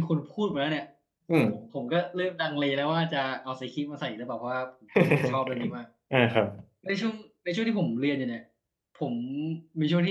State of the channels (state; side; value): identical; both; correlation 1.00